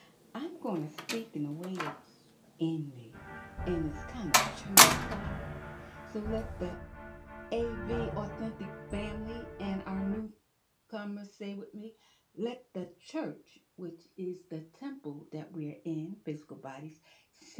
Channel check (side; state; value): both; identical; correlation 1.00